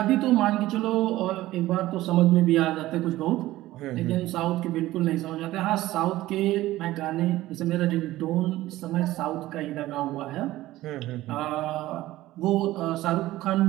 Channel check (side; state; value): left; quieter; 16.3 dB